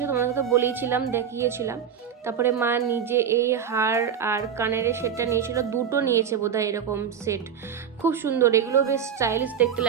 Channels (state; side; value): quieter; left; 8.0 dB